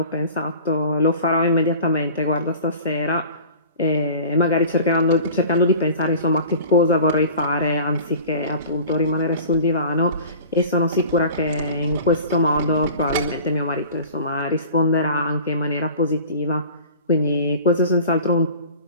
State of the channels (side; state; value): both; inverted; correlation -0.42